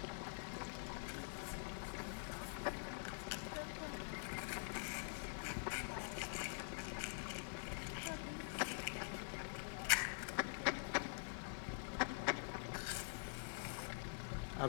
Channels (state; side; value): silent; right; digital silence